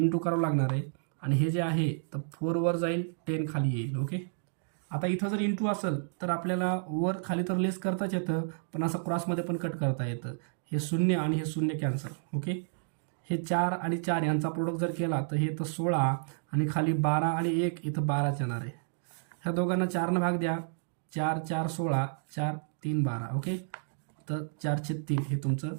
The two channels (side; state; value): left; silent; digital silence